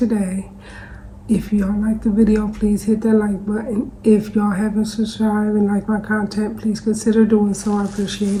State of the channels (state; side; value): identical; both; correlation 1.00